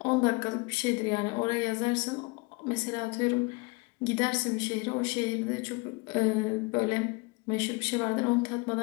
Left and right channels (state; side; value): quieter; right; 27.4 dB